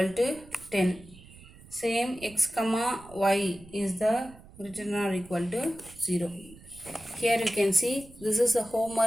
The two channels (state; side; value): noise; right; rumble, 21 dB below the sound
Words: to 10. Same x comma y is the greater than or equal to 0. Here you can see this is the